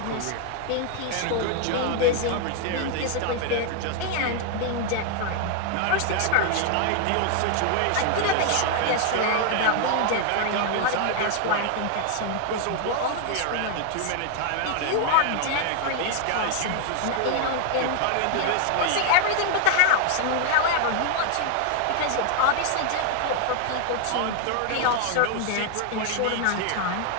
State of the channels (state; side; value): different; both; correlation 0.00